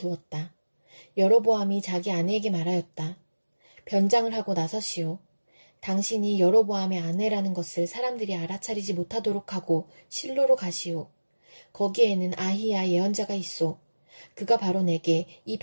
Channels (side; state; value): both; inverted; correlation -1.00